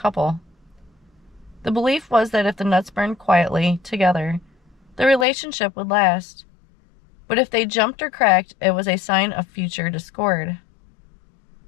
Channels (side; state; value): right; drops out; at 5.2 s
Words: The belief was that if the nuts burned quietly together, the relationship would last. But if they jumped or cracked, it was a sign of future discord.